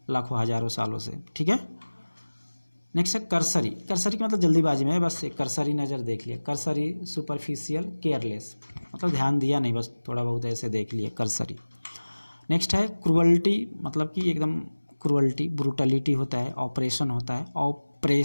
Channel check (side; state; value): both; inverted; correlation -1.00